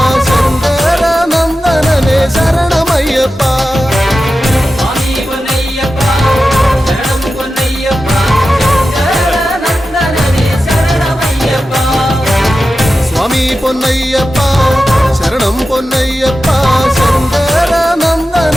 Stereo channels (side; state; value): both; normal; correlation 0.93